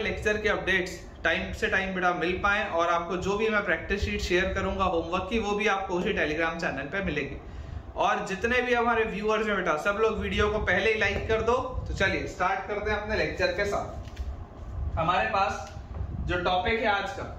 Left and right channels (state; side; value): identical; both; correlation 1.00